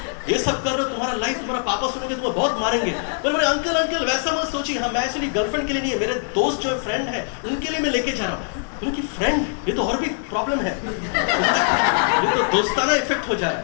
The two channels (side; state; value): right; silent; 64 dB below the other